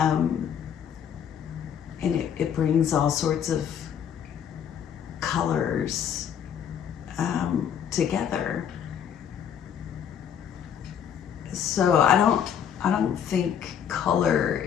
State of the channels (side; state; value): right; quieter; 8.6 dB